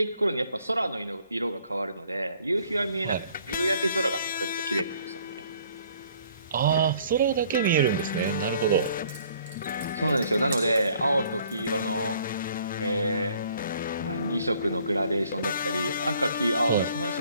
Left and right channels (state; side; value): inverted; both; correlation -0.60